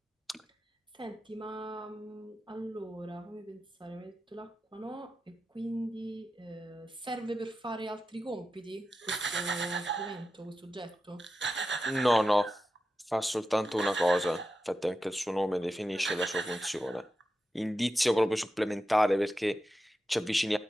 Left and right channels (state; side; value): normal; both; correlation 0.91